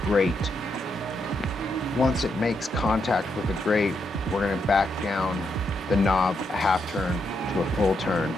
grate. Once it makes contact with the grate, we're going to back down the knob a half turn to a full turn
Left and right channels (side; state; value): both; normal; correlation 0.80